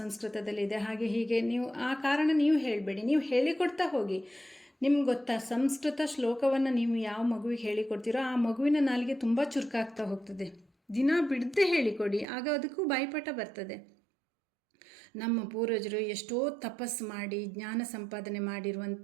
ಹಾಗೆ ಹೀಗೆ ನೀವು ಆ ಕಾರಣ ನೀವು ಹೇಳಬೇಡಿ, ನೀವು ಹೇಳಿಕೊಡ್ತಾ ಹೋಗಿ. ನಿಮ್ಗೆ ಗೊತ್ತಾ, ಸಂಸ್ಕೃತ ಶ್ಲೋಕವನ್ನು ನೀವು ಯಾವ ಮಗುವಿಗೆ ಹೇಳಿಕೊಡ್ತೀರೋ ಆ ಮಗುವಿನ ನಾಲಿಗೆ ತುಂಬ ಚುರುಕಾಗ್ತಾ ಹೋಗ್ತದೆ. ದಿನ ಬಿಡದೆ ಹೇಳಿಕೊಡಿ, ಆಗ ಅದಕ್ಕೂ ಬಾಯಿಪಾಠ ಬರ್ತದೆ. ನಮ್ಮ ಪೂರ್ವಜರು ಎಷ್ಟೋ ತಪಸ್ಸು ಮಾಡಿ ಜ್ಞಾನ ಸಂಪಾದನೆ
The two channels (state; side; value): drops out; left; at 12.2 s